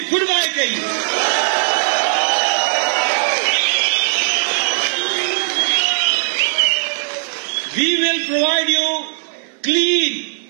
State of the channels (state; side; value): silent; left; digital silence